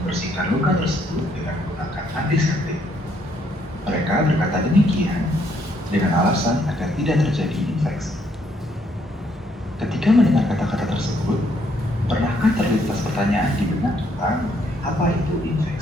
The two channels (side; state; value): both; normal; correlation 0.70